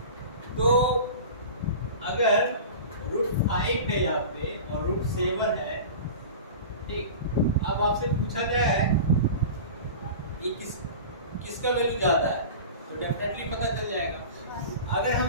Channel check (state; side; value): inverted; both; correlation -0.34